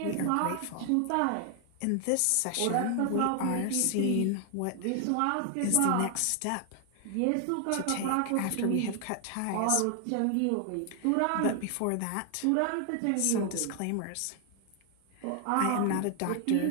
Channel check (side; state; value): both; different; correlation 0.00